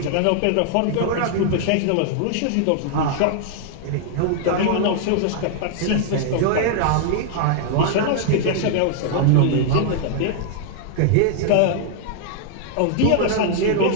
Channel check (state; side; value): different; both; correlation -0.01